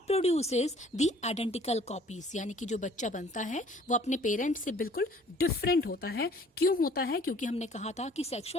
produces the identical copies, यानी कि जो बच्चा बनता है वो अपने parent से बिल्कुल डिफरेंट होता है. क्यों होता है? क्योंकि हमने कहा था कि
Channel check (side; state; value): both; normal; correlation 0.55